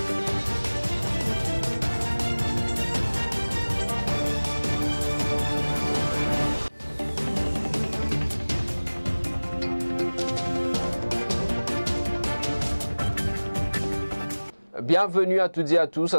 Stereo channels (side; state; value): both; inverted; correlation -1.00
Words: Bienvenue à toutes et à tous